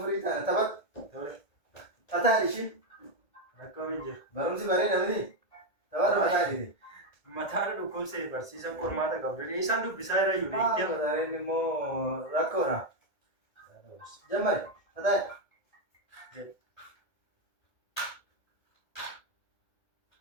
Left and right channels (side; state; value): right; late; 1.8 ms